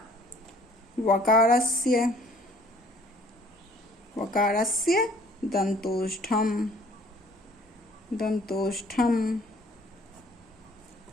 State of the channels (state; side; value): normal; both; correlation 0.56